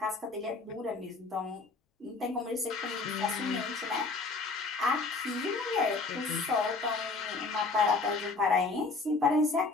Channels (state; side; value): quieter; right; 3.9 dB